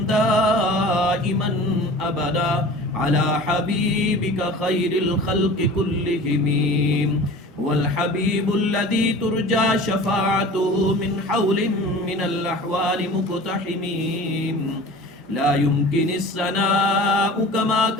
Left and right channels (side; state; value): both; normal; correlation 0.40